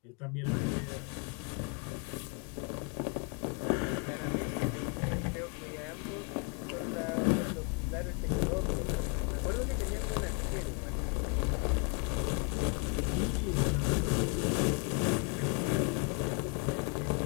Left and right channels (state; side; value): quieter; right; 34.8 dB